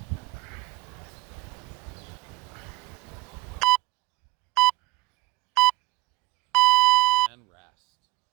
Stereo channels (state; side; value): quieter; left; 20.9 dB